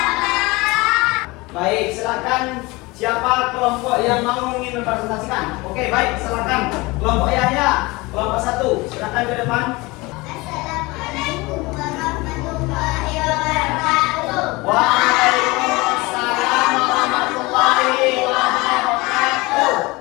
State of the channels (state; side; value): quieter; right; 23.2 dB